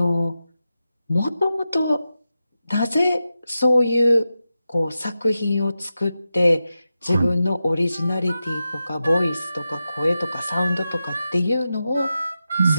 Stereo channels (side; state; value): both; inverted; correlation -0.91